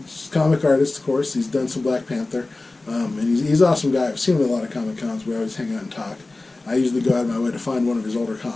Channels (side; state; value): right; quieter; 3.2 dB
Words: comic artist, of course. He's done some Black Panther. And he's an awesome guy. I've seen him at a lot of Comic Cons. We always hang out and talk. I usually go out of my way to find one of his older